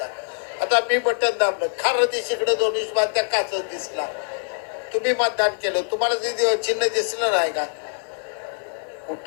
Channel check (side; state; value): right; silent; 63 dB below the other